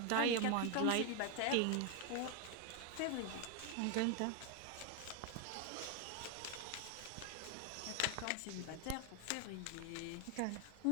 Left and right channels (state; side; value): different; both; correlation 0.01